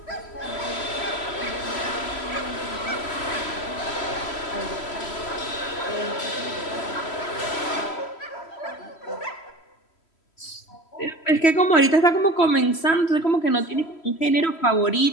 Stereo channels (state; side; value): late; right; 3.1 ms